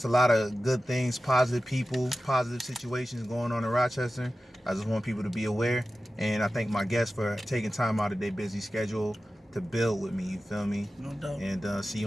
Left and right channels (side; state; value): both; normal; correlation 0.94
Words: a lot of good things, positive people, positive situations going on in Rochester. I just want people to be aware, and I thank my guests for taking time out of their busy schedule to build with me. You feel me? No doubt. And see